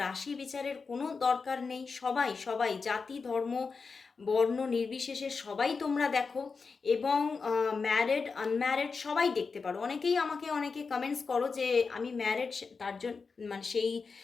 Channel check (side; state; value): right; quieter; 4.8 dB